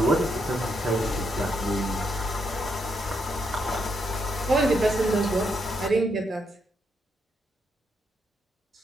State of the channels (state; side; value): normal; both; correlation 0.78